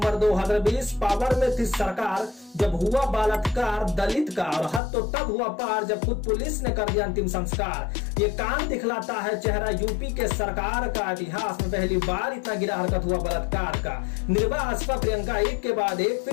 2020 पावर में थी सरकार जब हुआ बलात्कार दलित का, और हद तो तब हुआ पार जब खुद पुलिस ने कर दिया अंतिम संस्कार। ये कांड दिखलाता है चेहरा यूपी के सरकार का। इतिहास में पहली बार इतना गिरा हरकत हुआ बलात्कार का। निर्भया, आसपा, प्रियंका एक के बाद एक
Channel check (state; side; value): drops out; right; at 4.8 s